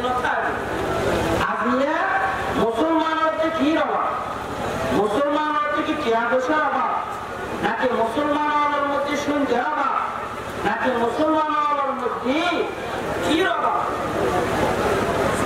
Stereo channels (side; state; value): both; identical; correlation 1.00